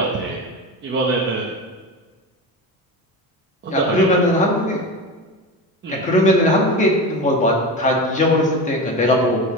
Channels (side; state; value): both; normal; correlation 0.25